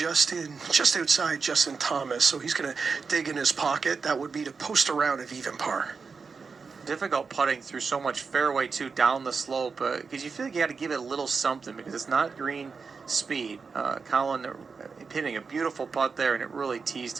outside Justin Thomas, so he's going to dig in his pocket. That would be to post a round of even par. Difficult putting through so much fairway too down the slope because you feel like you got to give it a little something because it's not green speed. Colin hitting a beautiful putt there, and it really teased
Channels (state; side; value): quieter; left; 5.1 dB